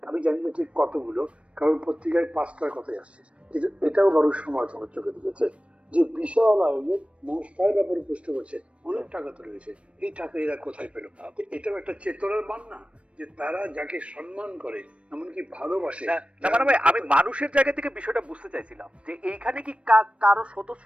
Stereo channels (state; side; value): late; left; 0.061 ms